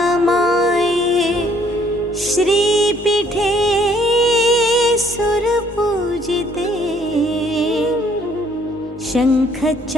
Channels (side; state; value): both; normal; correlation 0.63